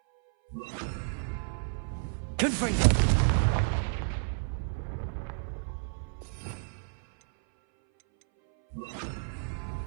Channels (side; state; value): left; silent; 57 dB below the other